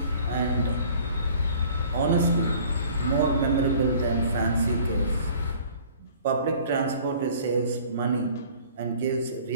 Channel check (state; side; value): inverted; both; correlation -0.51